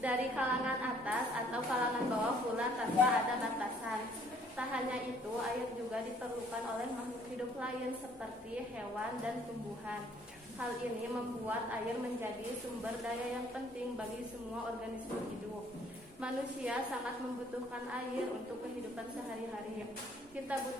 kalangan atas atau kalangan bawah pula tanpa ada batasan. Tak hanya itu, air juga diperlukan oleh makhluk hidup lain seperti hewan dan tumbuhan. Hal ini membuat air menjadi sumber daya yang penting bagi semua organisme hidup. Manusia sangat membutuhkan air untuk kehidupan sehari-hari. Kita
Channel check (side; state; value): both; normal; correlation 0.61